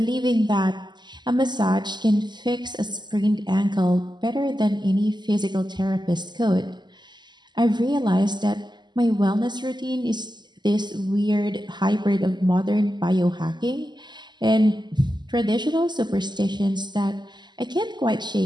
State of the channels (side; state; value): left; late; 0.21 ms